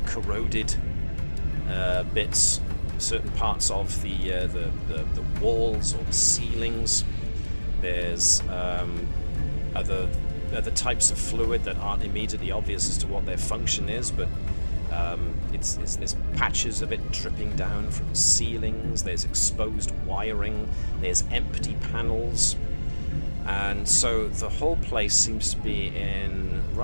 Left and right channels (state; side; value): inverted; both; correlation -1.00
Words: corroded bits, certain parts of the walls or the ceilings. There's other types of fluid that aren't immediately obvious as to what their function is, but there's patches of it dripping down from ceilings. There's exposed wiring. There's empty panels, and so the whole place seems to be in